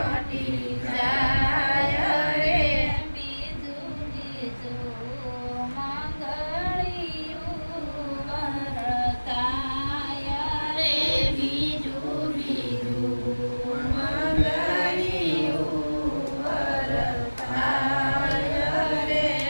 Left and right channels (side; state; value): both; inverted; correlation -1.00